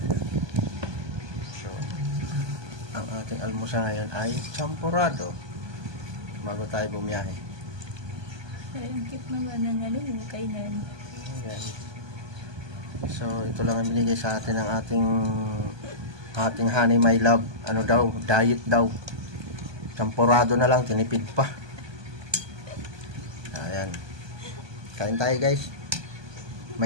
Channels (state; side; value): late; left; 1.2 ms